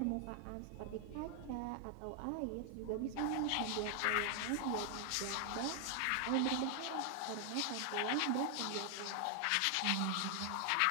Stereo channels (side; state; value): both; different; correlation 0.00